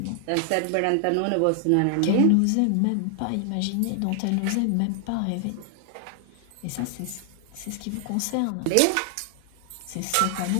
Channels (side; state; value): both; different; correlation 0.00